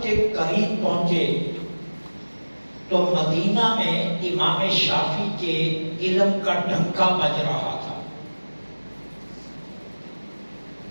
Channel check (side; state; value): both; inverted; correlation -1.00